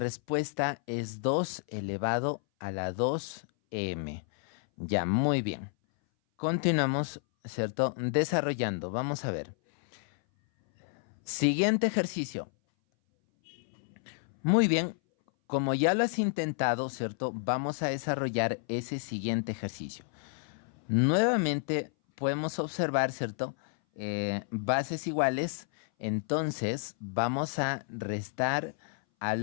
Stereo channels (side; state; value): right; silent; 57 dB below the other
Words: es 2 elevado a la 2m. Ya, muy bien. Continuamos, ¿cierto?, desarrollando. Vamos a ver. Siguiente ejercicio. Muy bien. Como ya lo has intentado, ¿cierto?, vamos a desarrollar ese siguiente ejercicio. Nuevamente podemos observar, ¿cierto?, bases iguales. Entonces vamos a restar a